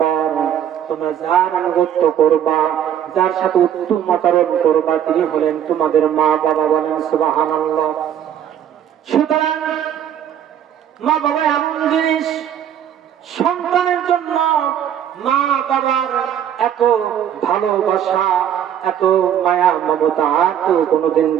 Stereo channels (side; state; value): left; quieter; 9.8 dB